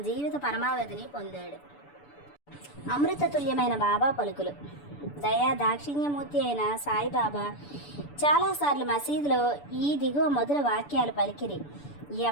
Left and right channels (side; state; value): right; late; 6.9 ms